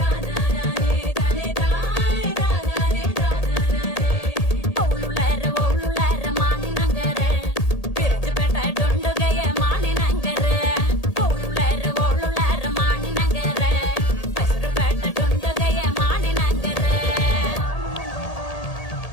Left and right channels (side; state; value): right; late; 1.8 ms